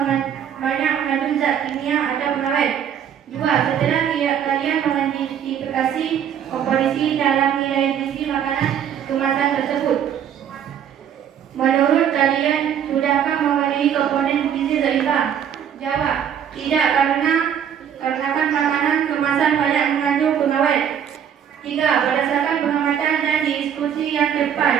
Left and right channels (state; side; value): quieter; left; 8.9 dB